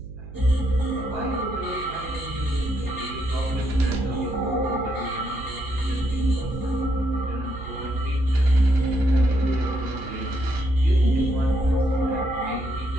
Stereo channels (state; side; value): noise; right; hum, 14 dB below the sound